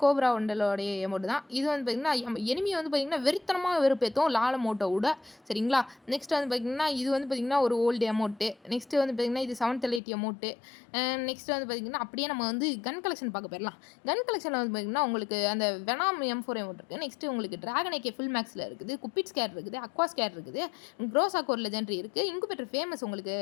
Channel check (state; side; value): drops out; right; at 10.0 s